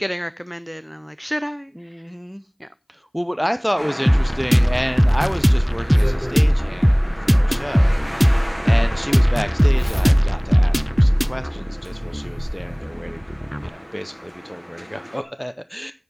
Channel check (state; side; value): identical; both; correlation 1.00